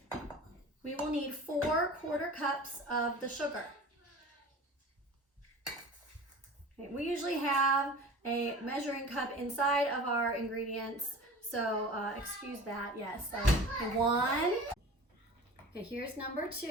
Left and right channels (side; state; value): both; normal; correlation 0.38